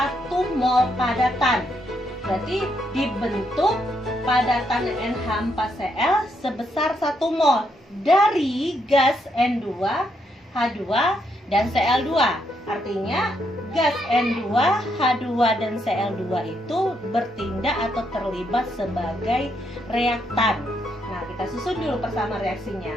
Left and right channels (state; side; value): normal; both; correlation 0.77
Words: mol padatan. Berarti dibentuk padatan NH4Cl sebesar 1 mol dari gas N2, H2, dan Cl2. Artinya gas N2, H2, dan Cl2 itu bertindak atau terlibat sebagai reaktan. Nah, kita susun dulu bersama reaksinya.